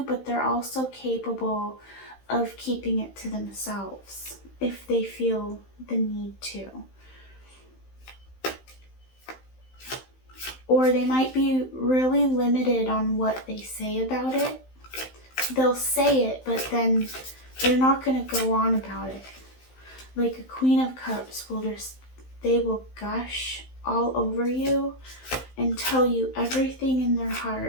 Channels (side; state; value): right; late; 15 ms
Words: but they're also capable of keeping it to themselves if they feel the need to. Or they might be really limited on what they say about it. They'll say it, but then they're not going to go on about it. Like a Queen of Cups they will gush all over you and tell you everything in their